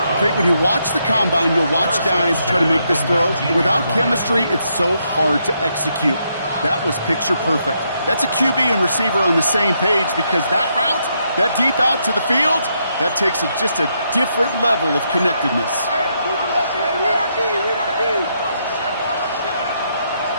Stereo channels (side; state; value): both; inverted; correlation -0.78